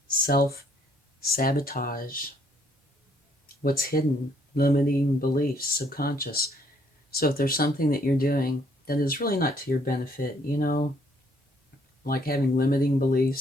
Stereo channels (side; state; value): both; normal; correlation 0.66